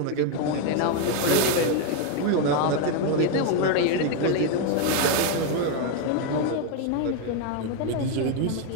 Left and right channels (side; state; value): both; different; correlation 0.01